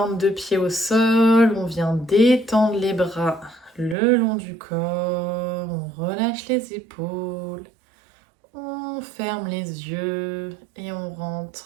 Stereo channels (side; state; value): left; drops out; at 4.0 s